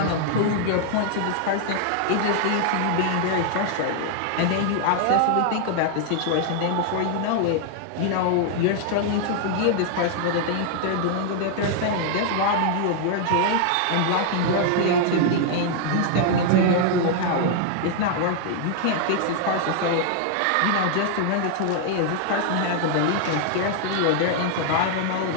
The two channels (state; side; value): different; both; correlation 0.00